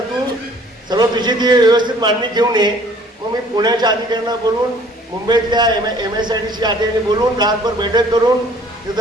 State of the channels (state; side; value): normal; both; correlation 0.55